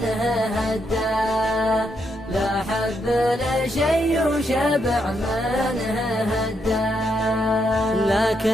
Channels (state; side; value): normal; both; correlation 0.79